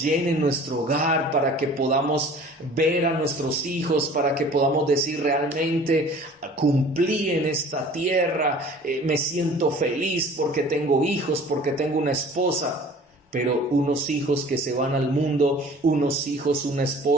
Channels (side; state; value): both; normal; correlation 0.47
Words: llene nuestro hogar, para que podamos ver a nuestros hijos, para que podamos decir realmente cumplí en esta tierra, me siento feliz porque tengo hijos, porque tengo una esposa. Pero unos hijos que se van al mundo, unos hijos, una